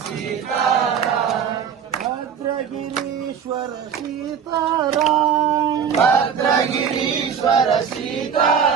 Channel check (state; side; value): quieter; left; 7.3 dB